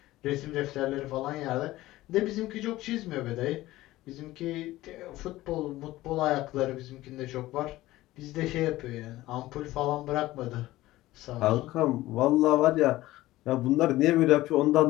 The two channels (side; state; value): right; quieter; 16.9 dB